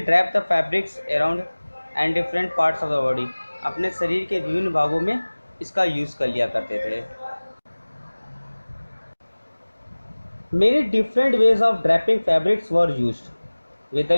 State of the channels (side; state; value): both; inverted; correlation -1.00